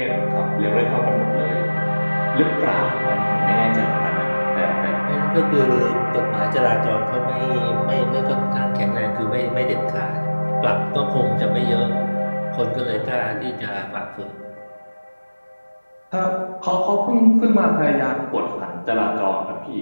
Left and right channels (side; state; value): both; inverted; correlation -1.00